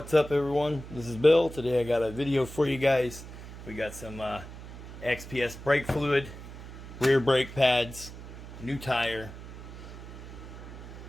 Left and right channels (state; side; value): noise; right; hum, 13 dB below the sound